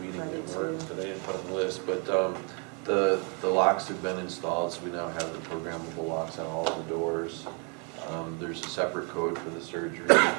I did at work too. today and put on the list, but the locks have been installed, so we now have the programmable locks on all the doors. There's a separate code for the surgery,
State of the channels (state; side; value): quieter; left; 36.0 dB